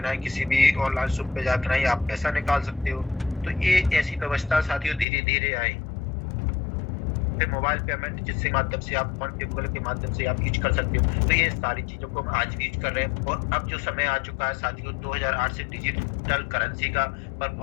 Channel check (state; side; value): drops out; right; at 5.1 s